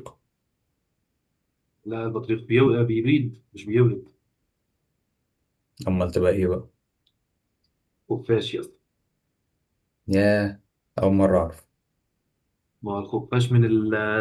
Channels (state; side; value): identical; both; correlation 1.00